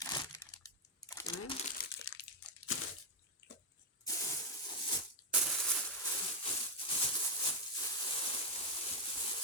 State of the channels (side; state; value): right; late; 1.1 ms